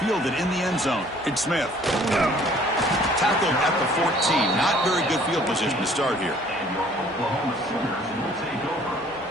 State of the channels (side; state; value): both; normal; correlation 0.56